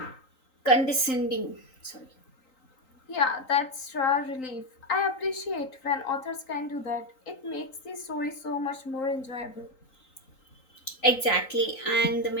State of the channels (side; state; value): right; late; 3.8 ms